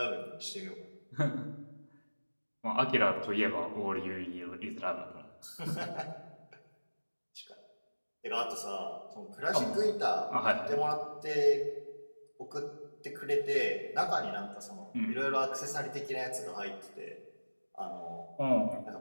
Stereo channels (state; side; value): inverted; both; correlation -1.00